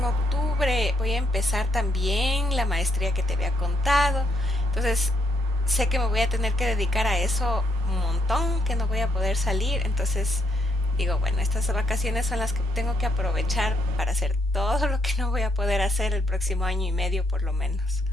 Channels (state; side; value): normal; both; correlation 0.74